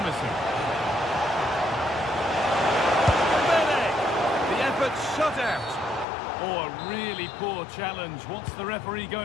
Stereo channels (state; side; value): drops out; right; at 6.1 s